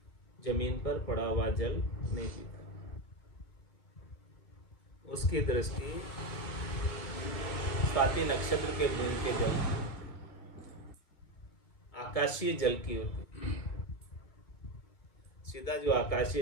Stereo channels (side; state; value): right; late; 2.2 ms